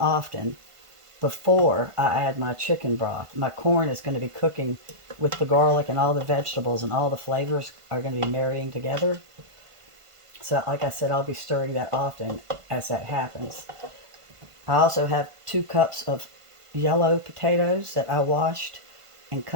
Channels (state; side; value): late; left; 1.5 ms